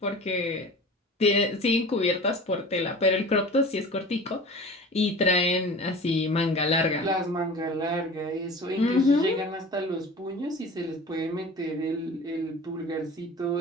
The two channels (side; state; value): both; normal; correlation 0.39